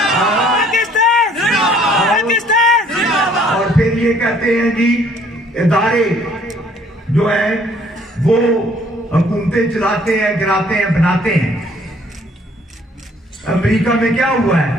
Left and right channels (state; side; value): normal; both; correlation 0.60